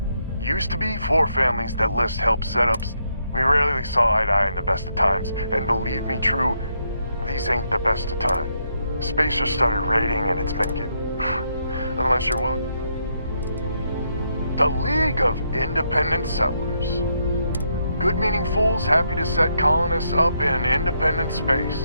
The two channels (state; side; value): inverted; both; correlation -0.77